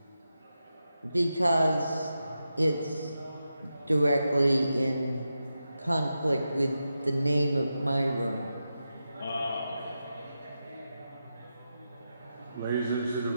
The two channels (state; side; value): inverted; both; correlation -0.89